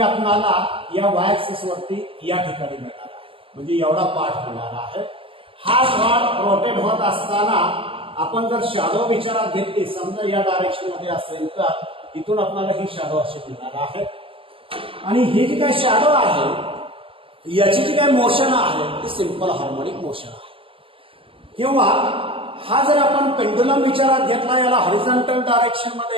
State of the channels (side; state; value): left; late; 0.26 ms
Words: या वाय ऍक्सिस वरती या ठिकाणी मिळणार आहे. म्हणजे एवढा पार्ट मिळणार आहे. हा रॉड रोटेट होत असताना आपण जर शॅडो विचारात घेतली, समजा या डायरेक्शन मध्ये असेल तर इथून आपल्याला ही शॅडो अशी मिळणार आहे. आणि ही जी काही शॅडो आहे याची जी काही मोशन आहे ती सिंपल हार्मोनिक मोशन आहे. किंवा हा जर आपण पेंडुलम विचारात घेतला, याला हॉरिझॉन्टल डायरेक्शन